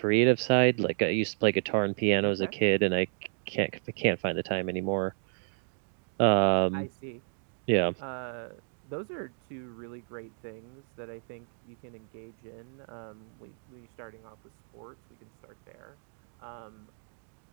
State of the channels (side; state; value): left; silent; digital silence